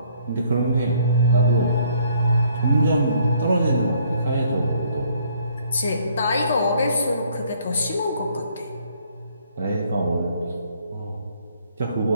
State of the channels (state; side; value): inverted; both; correlation -0.63